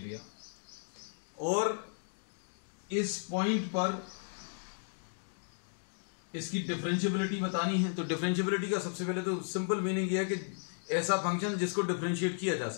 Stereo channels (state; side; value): silent; right; digital silence